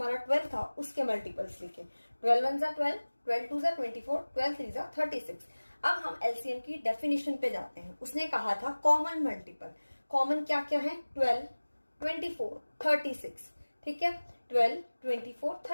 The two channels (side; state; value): both; inverted; correlation -1.00